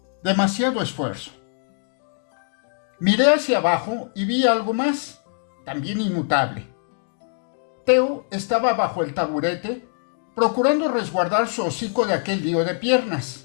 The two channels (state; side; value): silent; right; 60 dB below the other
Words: Demasiado esfuerzo. Miré hacia abajo y vi algo más, también inmutable. Theo estaba bajo el taburete, procurando resguardar su hocico de aquel lío de